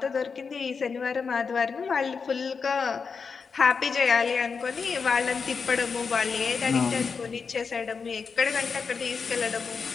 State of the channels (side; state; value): right; quieter; 5.4 dB